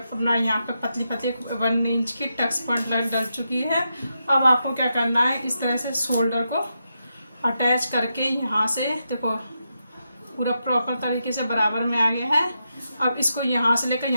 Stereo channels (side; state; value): both; inverted; correlation -0.85